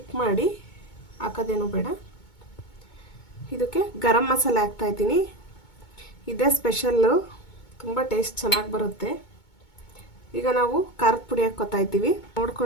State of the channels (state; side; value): late; right; 2.2 ms